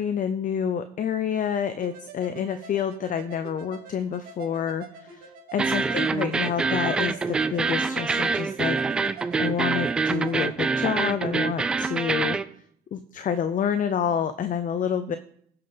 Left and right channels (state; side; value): normal; both; correlation 0.52